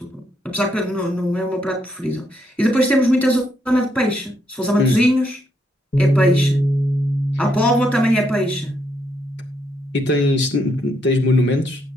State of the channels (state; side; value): normal; both; correlation 0.76